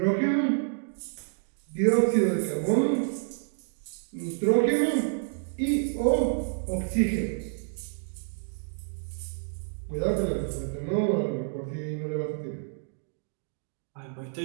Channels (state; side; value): silent; left; digital silence